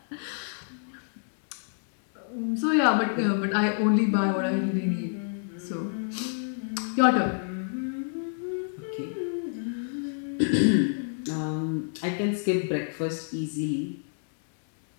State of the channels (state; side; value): silent; right; 59 dB below the other